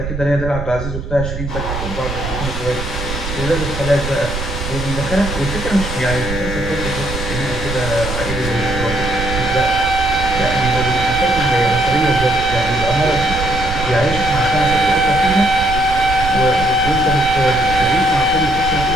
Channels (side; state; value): right; noise; rumble, 6 dB below the sound